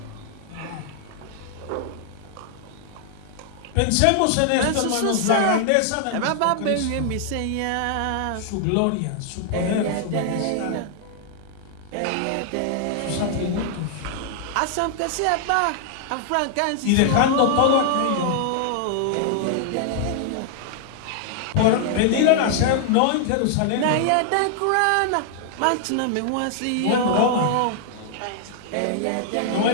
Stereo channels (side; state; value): both; different; correlation 0.00